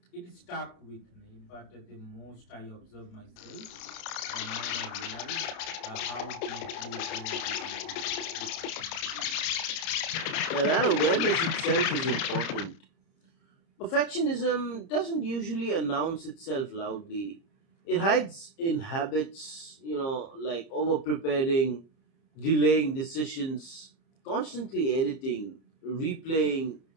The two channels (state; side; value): late; right; 30 ms